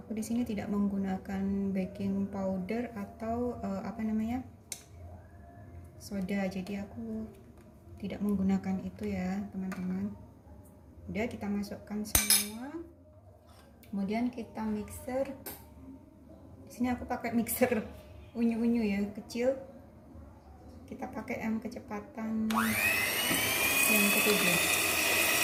di sini tidak menggunakan baking powder atau soda, jadi aku tidak menggunakan itu ya teman-teman. Udah, kita masukkan semua. Kemudian kita mixer. Di sini aku pakai mixer unyu-unyu ya, kecil. Kita pakai yang kecepatan yang ketujuh.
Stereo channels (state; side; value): identical; both; correlation 1.00